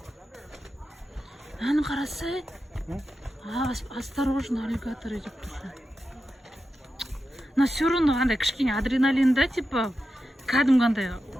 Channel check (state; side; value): normal; both; correlation 0.90